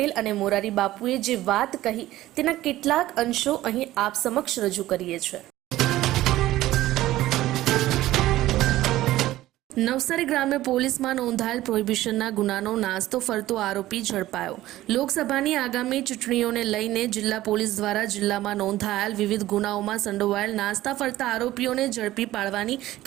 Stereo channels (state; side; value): quieter; left; 15.5 dB